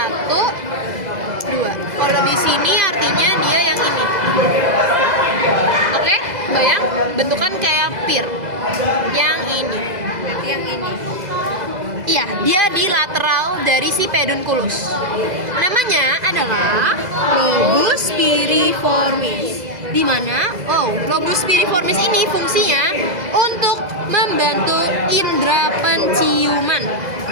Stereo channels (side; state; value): left; late; 2.0 ms